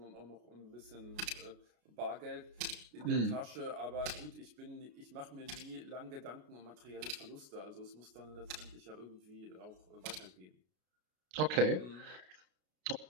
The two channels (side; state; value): left; late; 33 ms